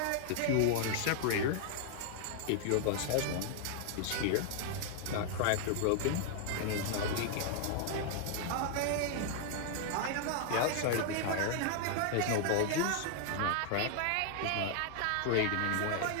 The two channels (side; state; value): both; different; correlation 0.00